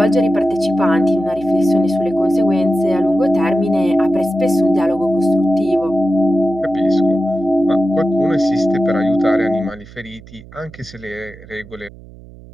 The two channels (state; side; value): noise; right; hum, 20 dB below the sound